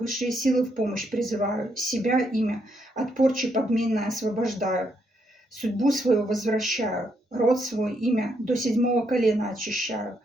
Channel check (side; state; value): both; normal; correlation 0.76